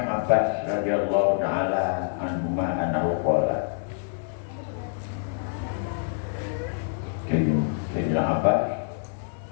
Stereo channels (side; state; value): right; silent; digital silence